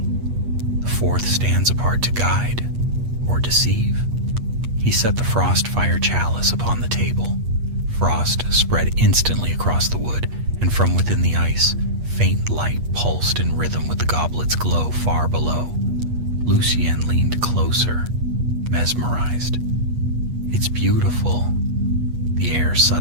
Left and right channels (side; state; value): left; late; 8.3 ms